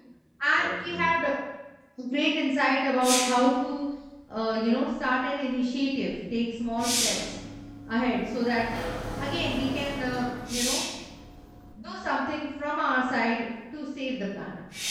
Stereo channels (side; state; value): both; identical; correlation 1.00